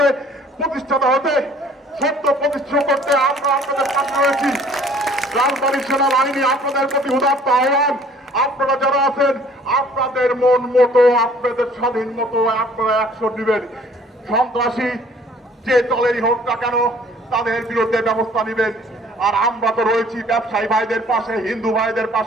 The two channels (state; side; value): normal; both; correlation 0.55